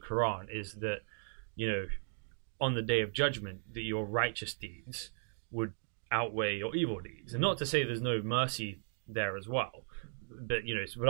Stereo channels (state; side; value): silent; left; digital silence